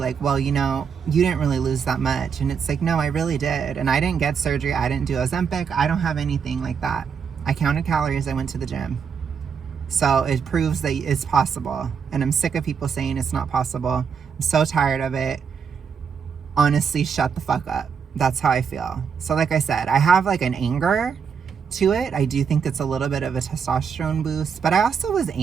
well, you know, you didn't really lose that much. And it's like, no, I really did. And I didn't get surgery. I didn't do Ozempic. I don't have anything like that. I counted calories. I went to the gym. So it proves that it's possible. And I'm sick of people saying it's not possible. I'm so tired of it. Honestly, shut the fuck up. That's how I feel. So like I said, I have like an anger to it. I do think it's a little bit of a testosterone boost, but I also was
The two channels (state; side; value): quieter; left; 6.6 dB